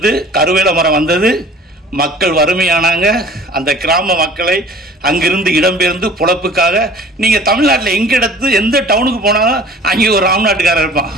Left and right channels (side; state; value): both; normal; correlation 0.47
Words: கருவேல மரம் வந்தது. மக்கள் வறுமையானாங்க. அந்த கிராம மக்களை அங்கிருந்து இடம்பெயர்ந்து பொழப்புக்காக, நீங்கள் தமிழ்நாட்டில் எங்கே எந்த டவுனுக்கு போனாலும் அங்கே ஒரு ராம்நாட்டுக்காரர் இருப்பான்.